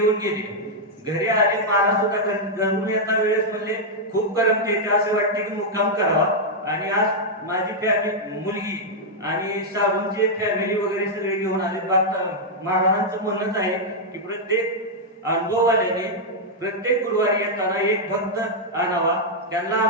गेले. घरी आले, महाराज सुद्धा घरून येता वेळेस म्हणले खूप गरम येते, असं वाटते की मुक्काम करावा. आणि आज माझी फॅमिली, मुलगी आणि साडूंची फॅमिली वगैरे सगळे घेऊन आले. महाराजांचं म्हणणंच आहे की प्रत्येक अनुभववाल्याने प्रत्येक गुरुवारी येताना एक भक्त आणावा, त्यांना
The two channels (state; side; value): normal; both; correlation -0.04